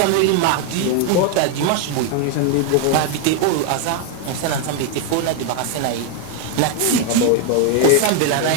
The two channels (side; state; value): both; different; correlation 0.00